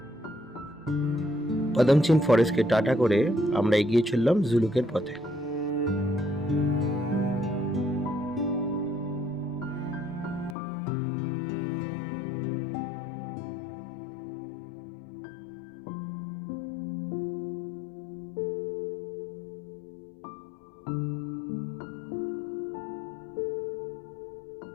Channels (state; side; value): drops out; right; at 10.6 s